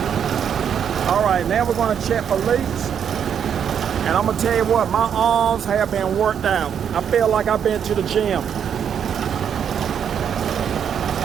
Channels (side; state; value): left; quieter; 8.2 dB